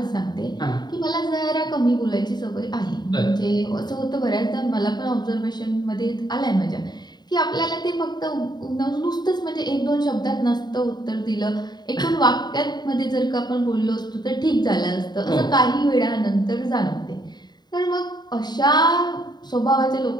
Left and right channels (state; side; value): late; right; 0.20 ms